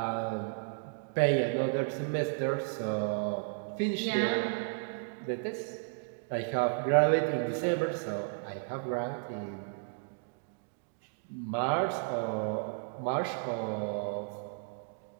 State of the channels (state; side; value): silent; left; digital silence